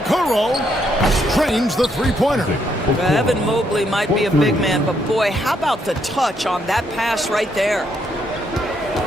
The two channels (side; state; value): both; normal; correlation 0.74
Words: Trains the 3-pointer. Evan Mobley might be a big man, but boy, how about the touch on that pass right there?